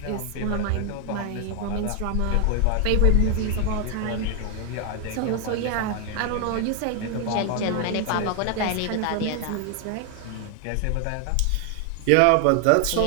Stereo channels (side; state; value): both; different; correlation 0.01